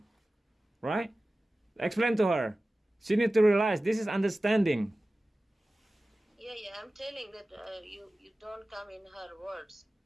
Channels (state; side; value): normal; both; correlation 0.96